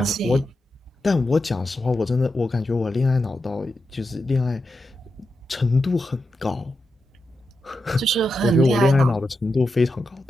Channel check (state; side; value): normal; both; correlation 0.88